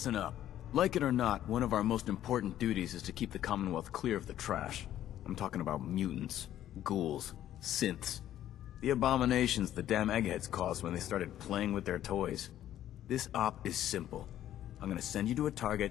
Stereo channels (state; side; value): quieter; right; 12.1 dB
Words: up. Like it or not, one of our most important duties is to keep the Commonwealth clear of the trash. I'm talking about mutants, ghouls, synths. The abominations the damn eggheads caused when they started playing with their toys. This op is simple. I'm gonna send you to a